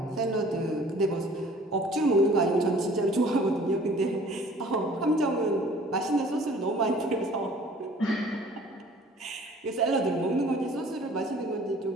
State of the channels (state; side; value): normal; both; correlation 0.51